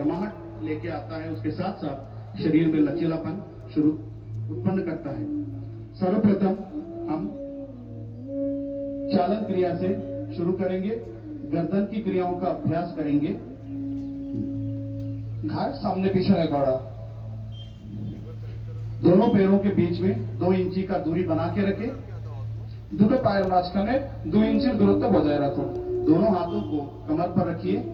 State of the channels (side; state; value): both; identical; correlation 1.00